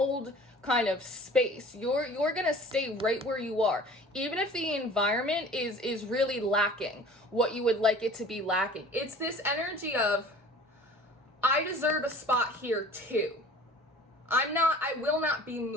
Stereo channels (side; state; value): both; normal; correlation 0.45